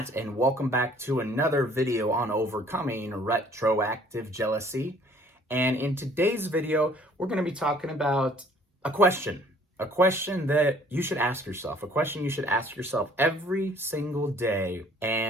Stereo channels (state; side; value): normal; both; correlation 0.57